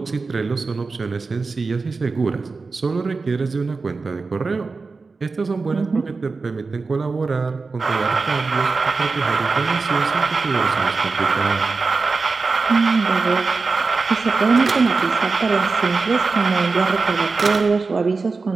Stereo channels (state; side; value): quieter; left; 4.2 dB